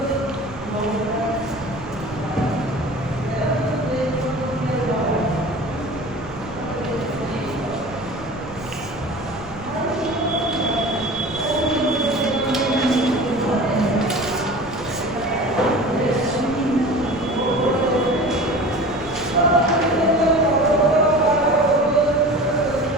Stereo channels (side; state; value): right; noise; rumble, 19 dB below the sound